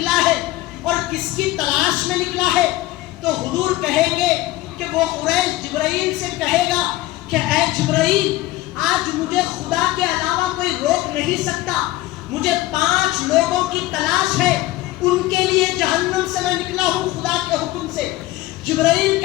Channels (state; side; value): quieter; right; 17.5 dB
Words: ہے اور کس کی تلاش میں نکلا ہے. تو حضور کہیں گے کہ وہ حریش جبرائیل سے کہے گا کہ اے جبرائیل آج مجھے خدا کے علاوہ کوئی روک نہیں سکتا, مجھے 5 لوگوں کی تلاش ہے, ان کے لیے جہنم سے میں نکلا ہوں خدا کے حکم سے. جبرائیل